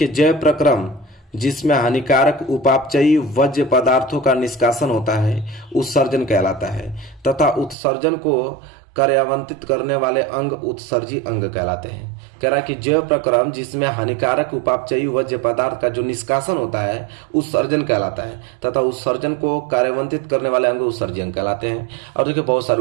जैव प्रक्रम जिसमें हानिकारक उपापचयी वज्र पदार्थों का निष्कासन होता है उत्सर्जन कहलाता है तथा उत्सर्जन को कार्यान्वित करने वाले अंग उत्सर्जी अंग कहलाते हैं। कह रहा है कि जैव प्रक्रम जिसमें हानिकारक उपापचयी वज्र पदार्थ का जो निष्कासन होता है उत्सर्जन कहलाता है तथा उत्सर्जन को कार्यान्वित करने वाले अंग उत्सर्जी अंग कहलाते हैं। और देखिए बहुत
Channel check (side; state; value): left; drops out; at 7.8 s